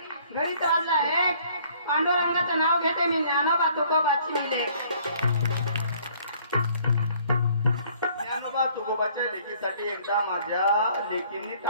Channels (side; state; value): both; inverted; correlation -0.59